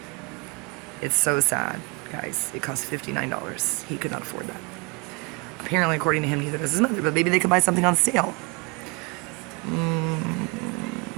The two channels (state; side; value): quieter; left; 28.4 dB